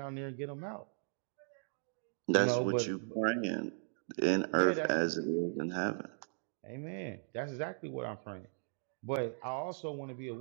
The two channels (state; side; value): silent; left; digital silence